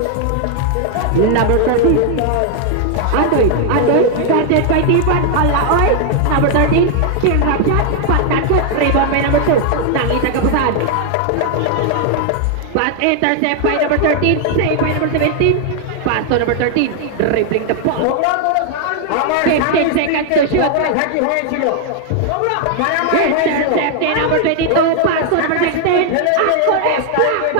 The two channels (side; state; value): both; different; correlation 0.00